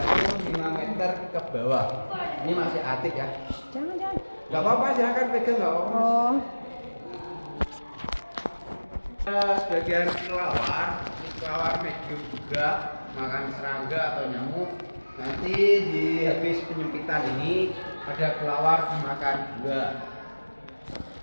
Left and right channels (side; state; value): both; inverted; correlation -1.00